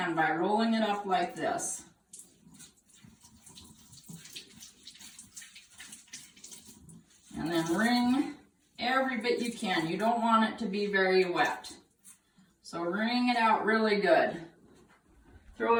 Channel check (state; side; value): identical; both; correlation 1.00